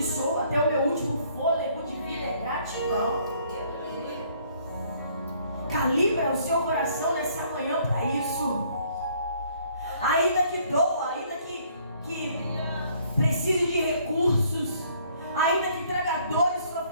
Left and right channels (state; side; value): inverted; both; correlation -0.62